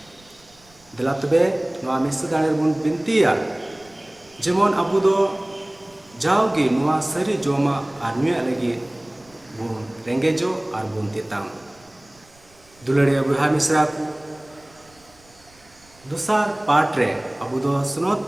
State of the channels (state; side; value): noise; right; rumble, 29 dB below the sound